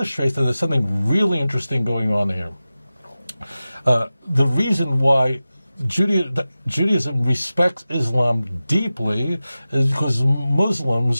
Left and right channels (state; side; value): inverted; both; correlation -0.95